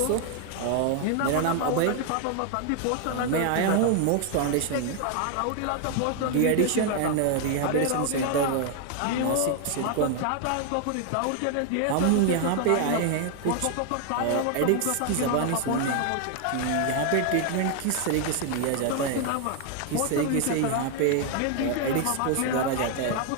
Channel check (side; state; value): both; different; correlation 0.00